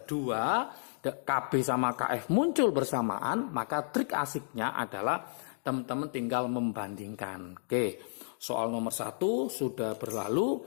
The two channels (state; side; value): silent; right; digital silence